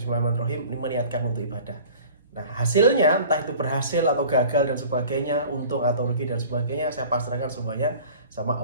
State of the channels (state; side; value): inverted; both; correlation -0.44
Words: meniatkan untuk ibadah. Nah, hasilnya entah itu berhasil atau gagal dan sebagainya, untung atau rugi dan sebagainya, saya pasrahkan semuanya sama